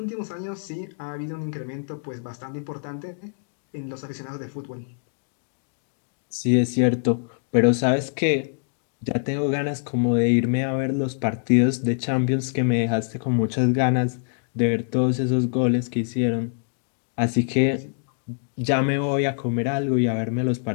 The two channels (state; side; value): silent; right; digital silence